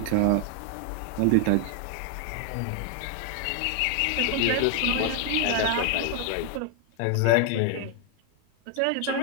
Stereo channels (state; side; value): different; both; correlation 0.00